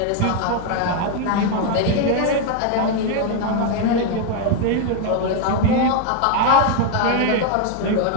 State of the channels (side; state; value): both; different; correlation 0.01